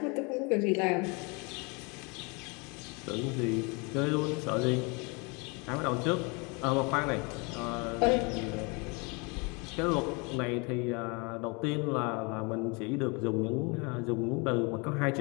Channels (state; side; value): quieter; right; 30.3 dB